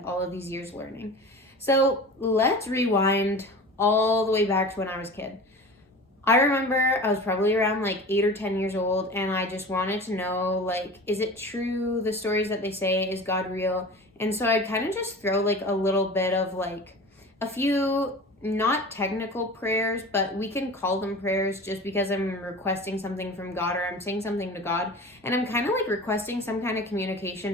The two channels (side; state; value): both; normal; correlation 0.36